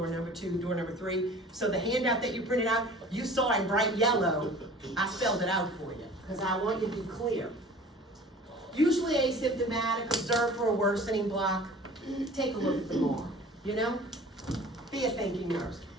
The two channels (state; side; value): normal; both; correlation 0.45